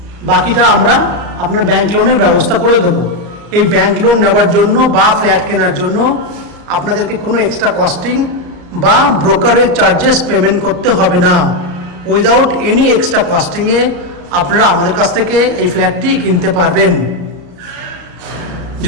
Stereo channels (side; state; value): left; late; 34 ms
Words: বাকিটা আমরা আপনার ব্যাংক লোনের ব্যবস্থা করে দেবো। এই ব্যাংক লোন নেওয়ার জন্য বা ফ্ল্যাট কেনার জন্য আপনাদেরকে কোনো এক্সট্রা কস্টিং বা ব্রোকারেজ চার্জেস পেমেন্ট করতে হবে না। উইদাউট এনি এক্সট্রা কস্টিংয়ে আপনারা আমাদের কাছ থেকে এই ফ্ল্যাটটি কিনতে পারবেন।